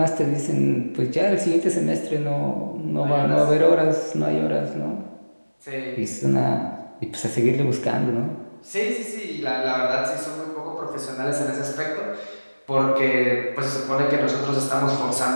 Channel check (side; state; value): both; inverted; correlation -1.00